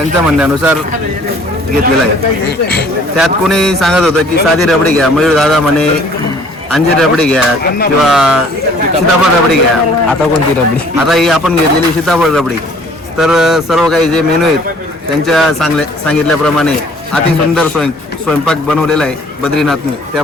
म्हणण्यानुसार घेतलेला आहे. त्यात कोणी सांगत होतं की साधी रबडी घ्या, मयूर दादा म्हणे अंजीर रबडी घ्या किंवा सीताफळ रबडी घ्या. आता कोणती रबडी? आता ही आपण घेतलेली सीताफळ रबडी. तर सर्व काही जे मेनू आहेत त्यांच्या सांगितल्याप्रमाणे अति सुंदर स्वयंपाक बनवलेला आहे बद्रीनाथने.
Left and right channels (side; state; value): both; normal; correlation 0.55